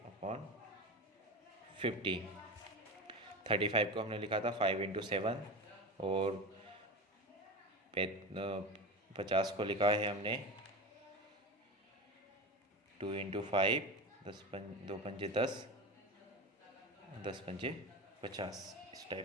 35 को हमने लिखा था 5 इंटू 7, और 50 को लिखा है हमने 2 इंटू 5, 2 पंजे 10, 10 पंजे 50। इस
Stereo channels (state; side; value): normal; both; correlation 0.25